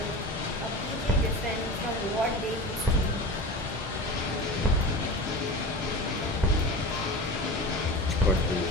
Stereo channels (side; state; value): both; normal; correlation 0.31